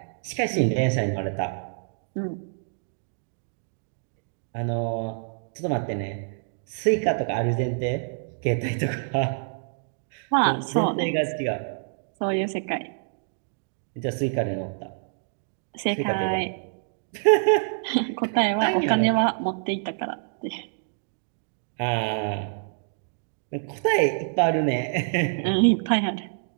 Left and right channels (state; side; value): silent; left; digital silence